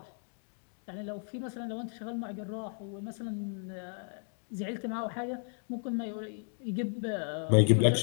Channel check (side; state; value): right; silent; 55 dB below the other